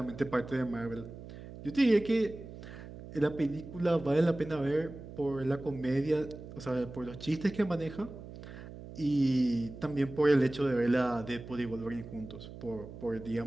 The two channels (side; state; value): right; noise; hum, 14 dB below the sound